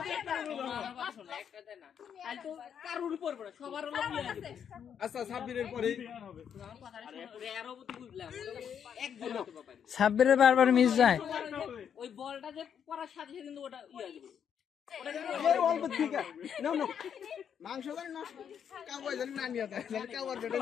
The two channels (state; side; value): quieter; right; 8.2 dB